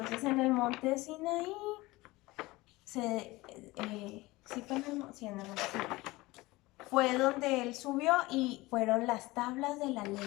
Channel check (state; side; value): quieter; right; 20.7 dB